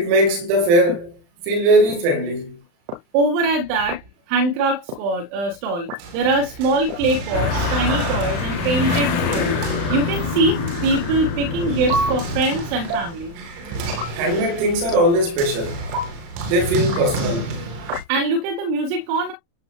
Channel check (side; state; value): left; late; 35 ms